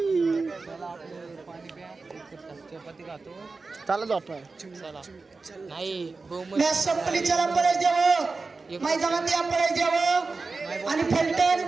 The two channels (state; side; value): quieter; left; 4.0 dB